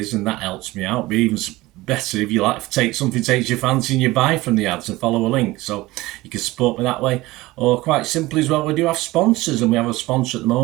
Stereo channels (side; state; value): left; quieter; 19.4 dB